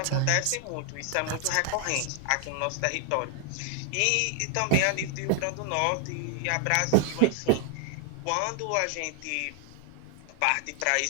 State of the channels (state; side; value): different; both; correlation 0.00